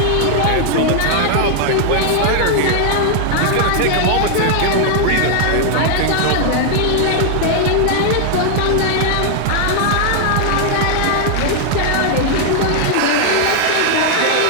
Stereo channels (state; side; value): different; both; correlation 0.00